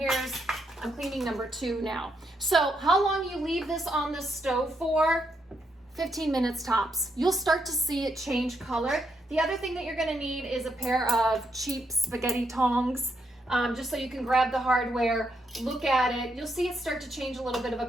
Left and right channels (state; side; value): normal; both; correlation 0.79